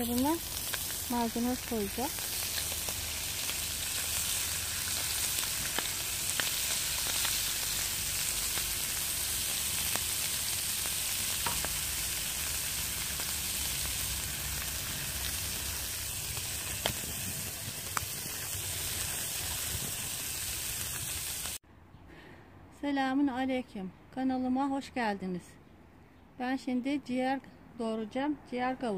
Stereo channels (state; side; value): identical; both; correlation 1.00